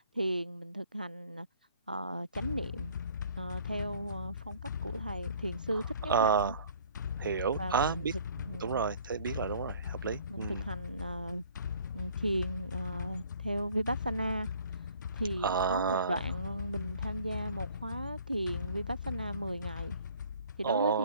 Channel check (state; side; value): inverted; both; correlation -0.56